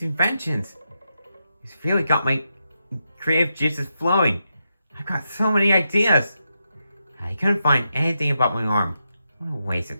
inventions? It's really got my creative juices flowing. I've got so many ideas. I couldn't find anything about my arm. What a waste of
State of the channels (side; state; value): both; inverted; correlation -0.85